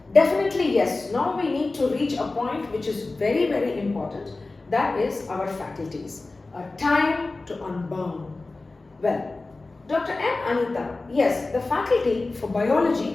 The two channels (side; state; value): right; quieter; 3.3 dB